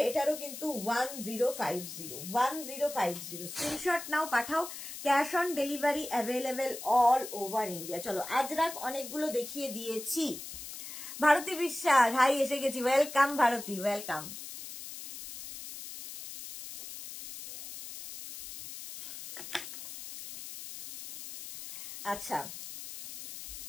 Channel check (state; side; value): noise; left; hiss, 11 dB below the sound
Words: এটারও কিন্তু 1050। স্ক্রিনশট নাও, পাঠাও। Cash on delivery available all over India. চলো, আজরাক অনেকগুলো দেখিয়ে দিয়েছি। ভারতী বিশ্বাস, হাই, এসে গেছি, ওয়েলকাম ভারতী, ওয়েলকাম। আচ্ছা,